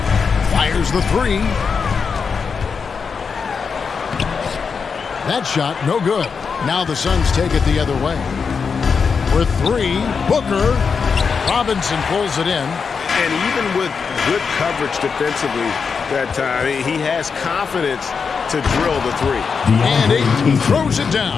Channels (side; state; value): right; quieter; 5.6 dB